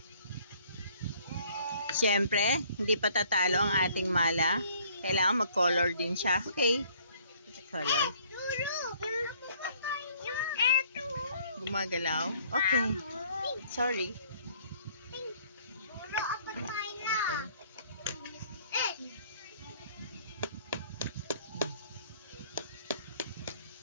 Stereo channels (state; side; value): inverted; both; correlation -0.59